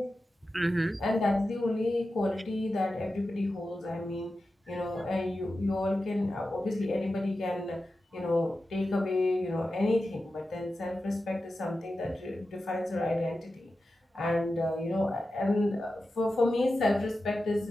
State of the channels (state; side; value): normal; both; correlation 0.92